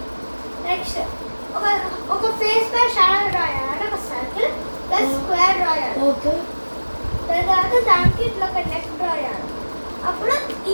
నెక్స్ట్ ఒక ఫేస్ పై షాడో డ్రా చేయాలి ఒక సర్కిల్ ప్లస్ స్క్వేర్ డ్రా చేయాలి ఓకే. తర్వాత దానికి ఇట్లా ఒక నెక్ డ్రా చేయాలి అప్పుడు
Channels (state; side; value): inverted; both; correlation -1.00